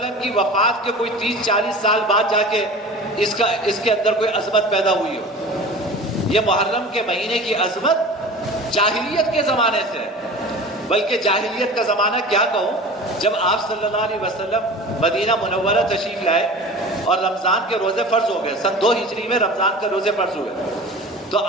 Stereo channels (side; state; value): both; normal; correlation 0.37